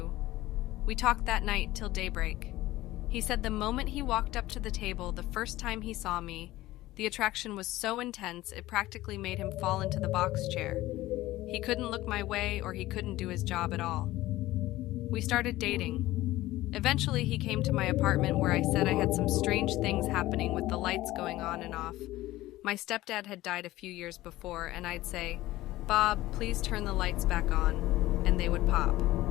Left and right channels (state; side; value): quieter; right; 16.8 dB